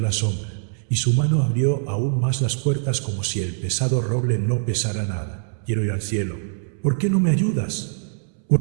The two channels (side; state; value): left; silent; 63 dB below the other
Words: la sombra, y su mano abrió aún más las puertas como si el pesado roble no pesara nada. Quiero ir al cielo. ¿Por qué no me ayudas?